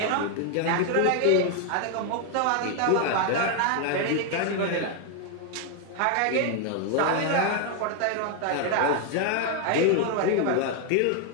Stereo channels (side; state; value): both; different; correlation 0.00